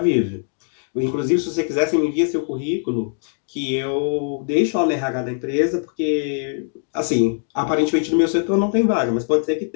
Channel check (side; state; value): right; silent; digital silence